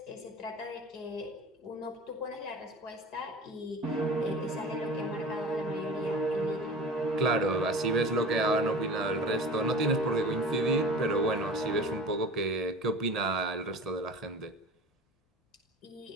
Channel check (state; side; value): normal; both; correlation 0.37